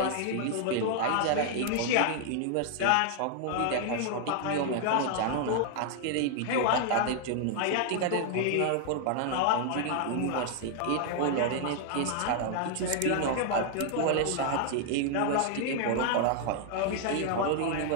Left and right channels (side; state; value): both; different; correlation 0.00